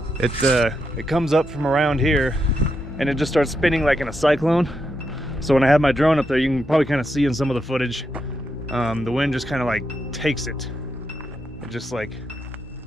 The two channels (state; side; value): normal; both; correlation 0.83